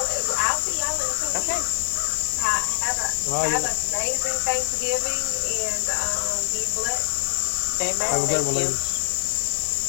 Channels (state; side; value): silent; right; 60 dB below the other